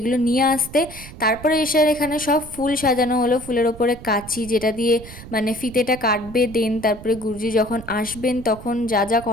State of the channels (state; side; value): noise; right; rumble, 15 dB below the sound